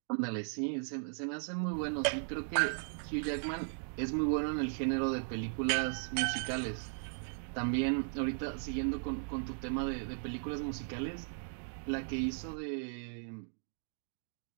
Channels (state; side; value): silent; left; digital silence